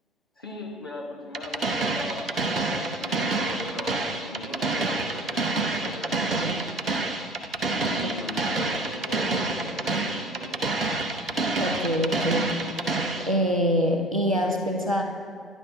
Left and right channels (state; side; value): normal; both; correlation 0.42